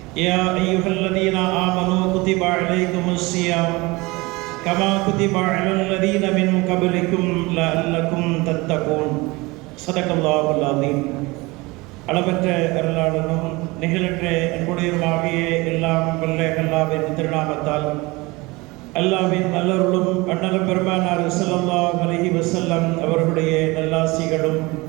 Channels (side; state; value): left; quieter; 23.4 dB